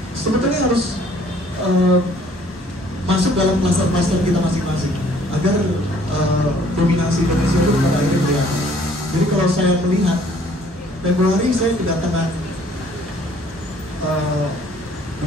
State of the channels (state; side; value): normal; both; correlation 0.59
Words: sebetulnya harus masuk dalam pasar-pasar kita masing-masing agar dominasi Indonesia itu pada akhirnya kelihatan. Jadi kalau saya melihat Februari saya kedatangan